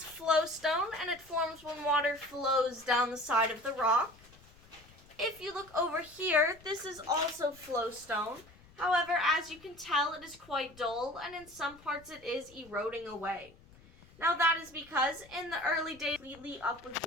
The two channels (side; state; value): left; noise; rumble, 25 dB below the sound